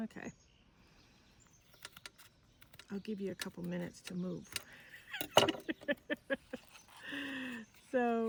I'll give you a couple minutes to move.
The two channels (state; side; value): identical; both; correlation 1.00